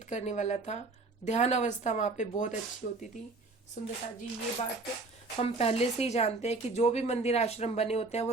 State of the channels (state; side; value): quieter; left; 3.6 dB